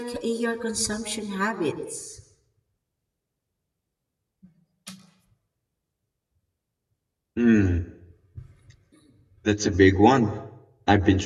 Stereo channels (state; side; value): identical; both; correlation 1.00